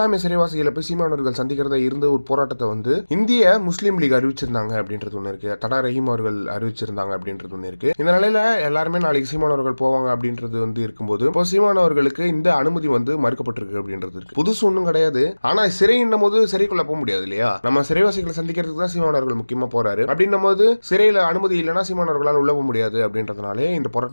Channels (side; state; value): both; inverted; correlation -1.00